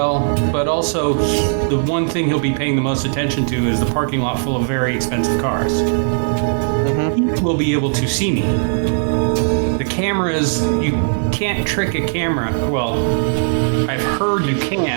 but also the one thing he'll be paying the most attention to is the parking lot full of very expensive cars. He will be able to see me. The cameras, you can't trick a camera. Well, I've heard you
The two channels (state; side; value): silent; left; 61 dB below the other